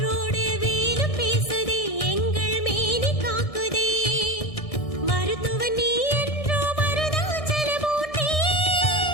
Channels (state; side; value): late; right; 1.6 ms